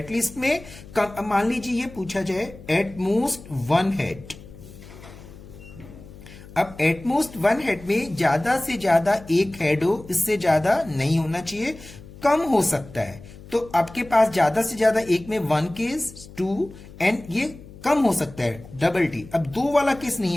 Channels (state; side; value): noise; left; hum, 18 dB below the sound